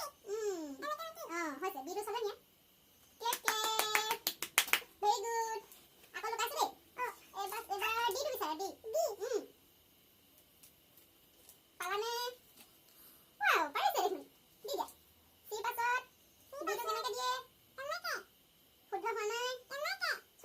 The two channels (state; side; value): identical; both; correlation 1.00